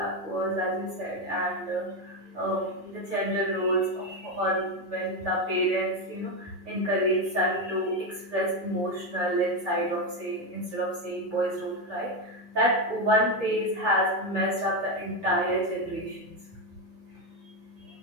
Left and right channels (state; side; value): late; left; 6.8 ms